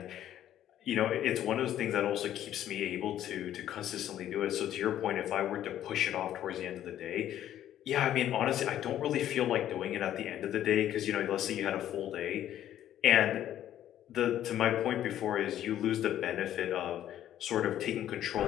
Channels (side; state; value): right; quieter; 11.6 dB